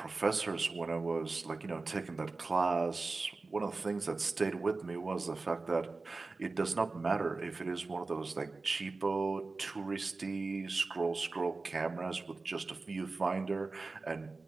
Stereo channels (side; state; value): left; quieter; 3.7 dB